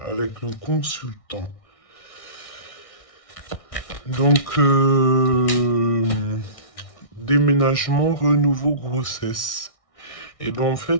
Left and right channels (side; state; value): right; late; 1.6 ms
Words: avec le consultant. Donc, déménagement, renouveau, grossesse. Et ben en